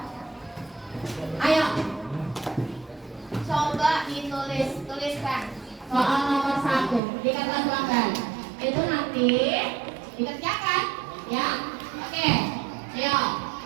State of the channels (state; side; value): drops out; left; at 7.0 s